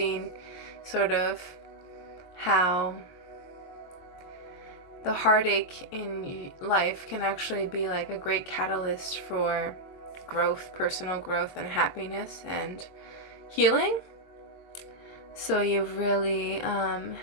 sort of how the heartache in life can actually be like a great catalyst for growth, personal growth and happiness and healing. So you've really,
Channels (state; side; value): late; right; 22 ms